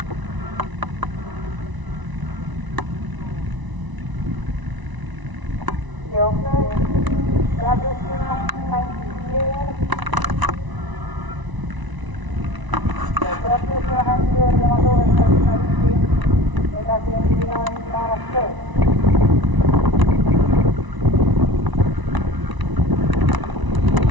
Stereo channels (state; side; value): late; left; 1.0 ms